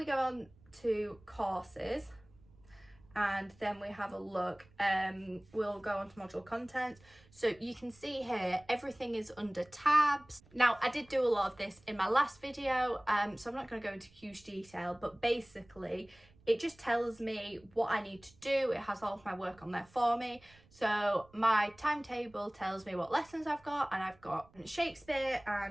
go on to courses, and then we have a look, we'll go on to module content. So you can see here everything is under tabs. Now I did do a lot of this in my last video, so I'm not going to go into huge detail, but basically it just tells me what I need to do. It has all of my work on there for me. So my timetable tells me what lessons I've got, and I've got Shakespeare,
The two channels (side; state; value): right; noise; rumble, 28 dB below the sound